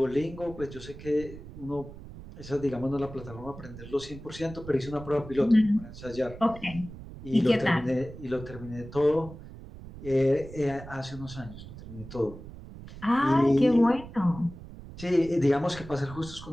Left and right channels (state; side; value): noise; right; rumble, 14 dB below the sound